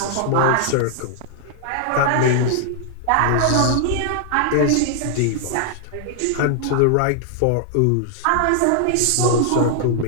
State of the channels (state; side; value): different; both; correlation -0.01